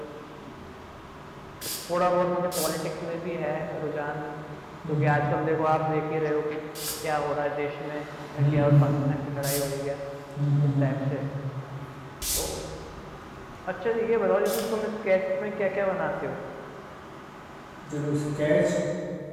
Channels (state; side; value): identical; both; correlation 1.00